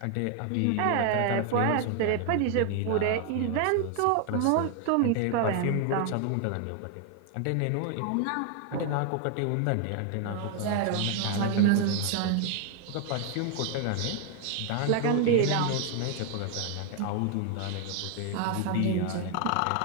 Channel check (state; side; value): different; both; correlation 0.00